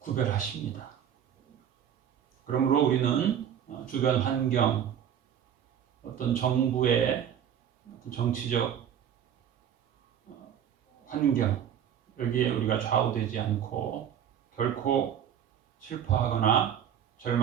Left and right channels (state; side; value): quieter; left; 9.3 dB